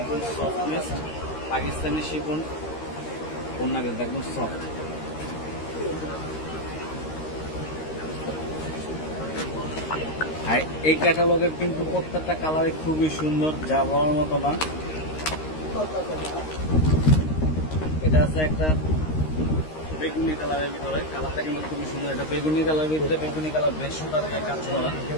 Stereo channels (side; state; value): right; late; 13 ms